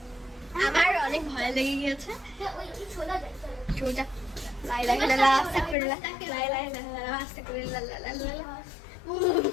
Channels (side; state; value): right; drops out; at 5.8 s